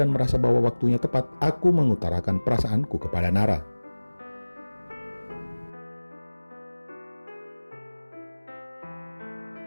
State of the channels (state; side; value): inverted; both; correlation -1.00